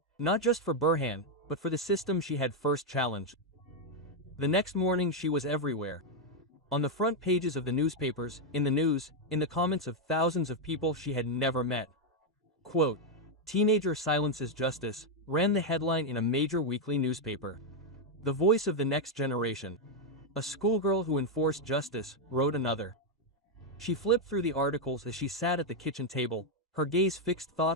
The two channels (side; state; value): both; normal; correlation 0.01